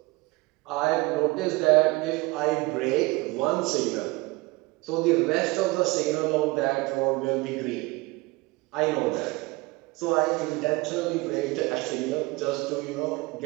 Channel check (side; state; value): left; quieter; 23.7 dB